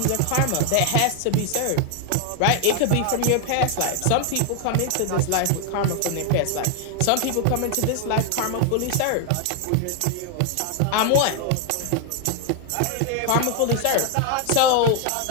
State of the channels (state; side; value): different; both; correlation 0.01